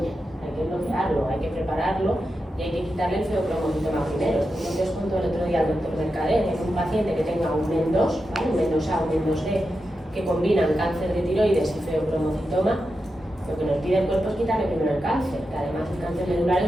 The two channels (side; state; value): both; normal; correlation 0.89